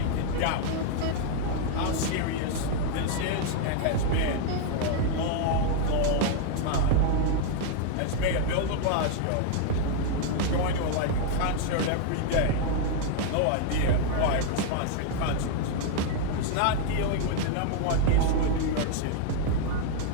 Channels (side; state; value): both; different; correlation 0.00